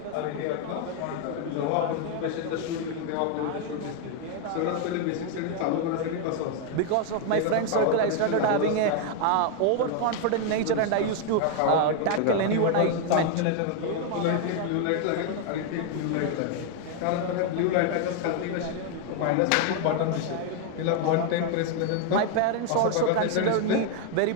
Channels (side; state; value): both; different; correlation 0.00